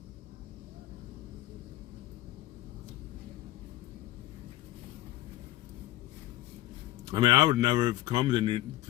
I mean, I would never have come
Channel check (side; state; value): right; quieter; 15.7 dB